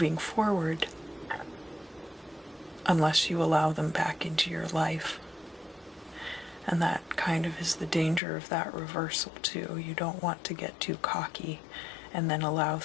forward unless you allow them back into your life. And that kind of is the danger of that reversal too. You don't want to get too cocky and then allow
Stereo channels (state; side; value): drops out; right; at 8.2 s